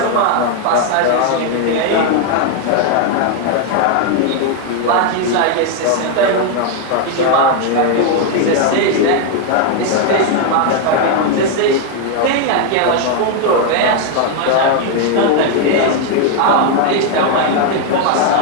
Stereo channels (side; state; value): both; different; correlation 0.01